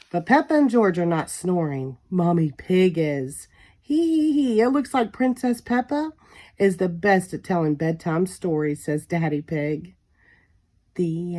But Peppa and George are not snoring. Mommy Pig is. Hee. It looks like Princess Peppa is the best at telling bedtime stories, says Daddy Pig. The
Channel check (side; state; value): both; identical; correlation 1.00